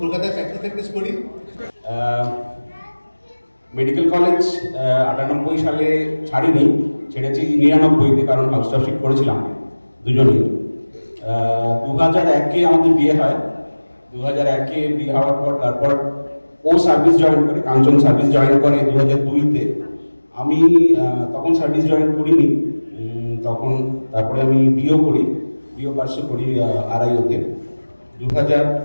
কলকাতায় প্র্যাকটিস করি। মেডিকেল কলেজ 98 সালে ছাড়িনি, ছেড়েছি 99-তে, কারণ হাউসটাফশিপ করেছিলাম দুজনেই। 2001-এ আমাদের বিয়ে হয়। 2001-এ বিয়ে হওয়ার পর তারপর ও সার্ভিস জয়েন করে, কাঞ্চন সার্ভিস জয়েন করে 2002-তে। আমি তখন সার্ভিস জয়েন করিনি, তখন তারপরে আমি বিয়েও করি। ডিও পার্সে করি আড়াইওতে।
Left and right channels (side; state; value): both; inverted; correlation -1.00